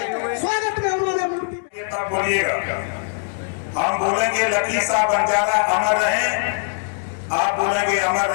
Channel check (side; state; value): right; silent; digital silence